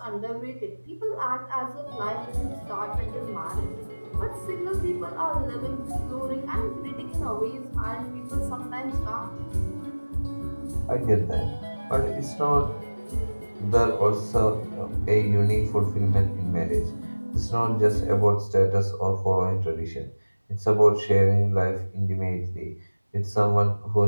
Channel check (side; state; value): both; inverted; correlation -1.00